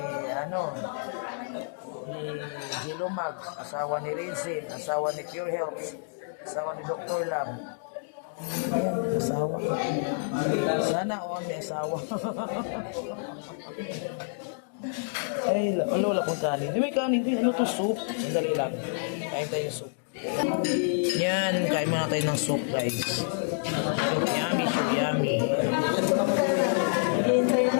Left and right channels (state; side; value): silent; right; digital silence